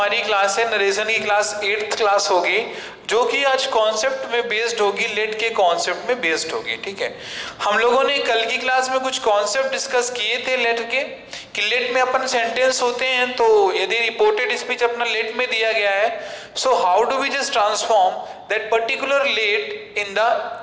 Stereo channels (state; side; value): identical; both; correlation 1.00